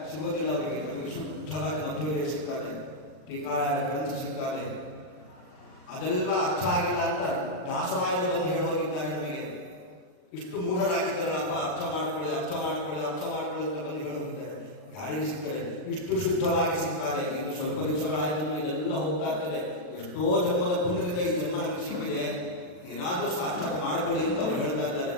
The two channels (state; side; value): late; right; 39 ms